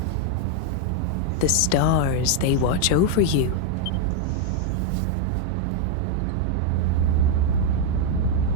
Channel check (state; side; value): different; both; correlation 0.00